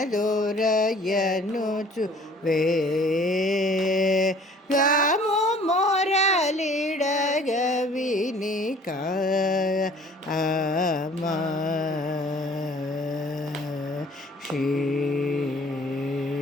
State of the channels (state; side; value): normal; both; correlation 0.52